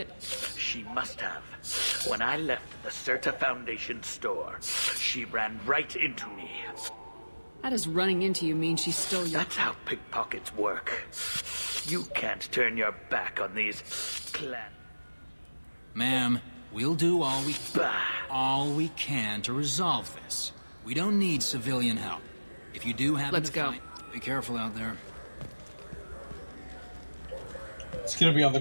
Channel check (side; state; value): both; inverted; correlation -1.00